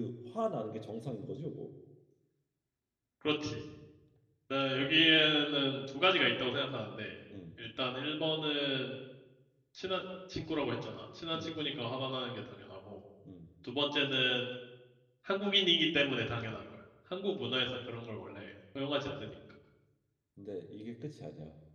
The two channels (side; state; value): both; identical; correlation 1.00